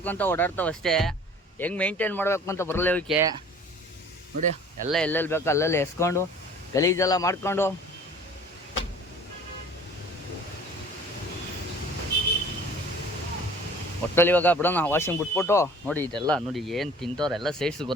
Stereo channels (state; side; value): normal; both; correlation 0.47